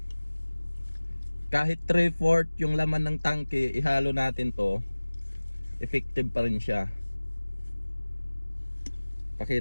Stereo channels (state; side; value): inverted; both; correlation -1.00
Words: kahit 3/4 yung laman ng tangke, ihalo natin to, effective pa rin siya.